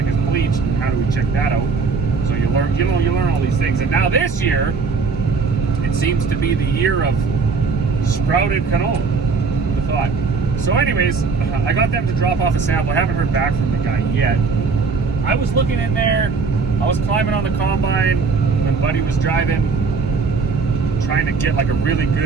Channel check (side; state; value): left; quieter; 4.7 dB